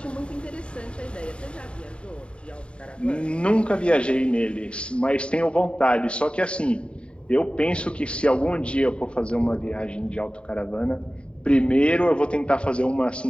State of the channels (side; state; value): right; late; 0.056 ms